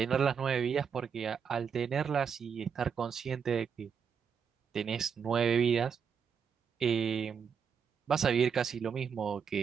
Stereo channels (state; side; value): quieter; left; 6.8 dB